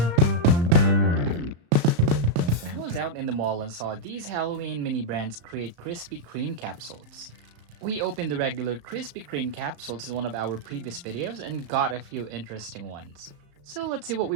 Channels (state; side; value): late; left; 35 ms